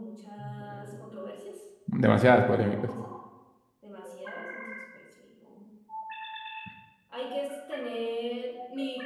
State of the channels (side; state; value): both; identical; correlation 1.00